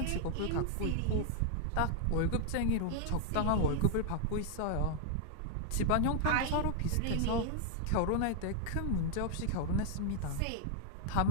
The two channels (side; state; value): both; different; correlation 0.00